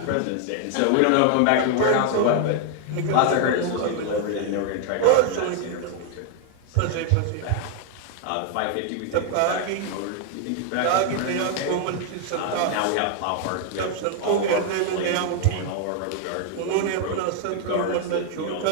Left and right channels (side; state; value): both; different; correlation 0.00